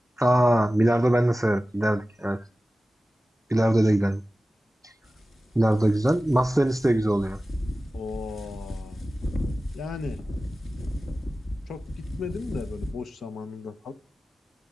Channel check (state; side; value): normal; both; correlation 0.95